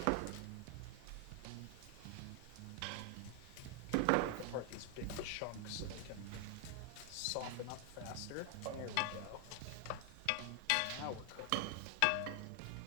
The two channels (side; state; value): both; different; correlation 0.00